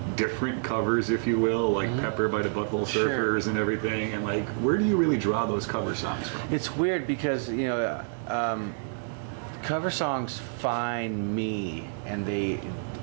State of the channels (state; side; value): silent; left; 59 dB below the other